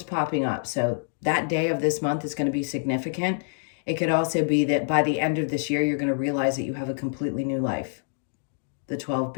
popping up. So that day of this month is going to be significant. It could also be that by the end of this year, you're going to realize that you have a completely new life. The 12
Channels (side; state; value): right; silent; digital silence